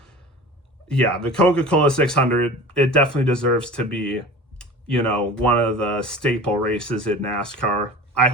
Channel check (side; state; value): both; normal; correlation 0.38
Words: yeah, the Coca-Cola 600, it definitely deserves to be, one of the staple races in NASCAR. I